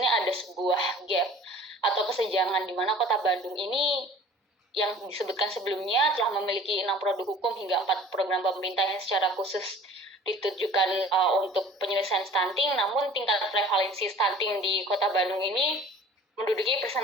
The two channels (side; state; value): both; normal; correlation 0.47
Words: ada sebuah gap atau kesenjangan di mana Kota Bandung ini yang disebutkan sebelumnya telah memiliki 6 produk hukum hingga 4 program pemerintah yang secara khusus ditujukan untuk penyelesaian stunting, namun tingkat prevalensi stunting di Kota Bandung ini menduduki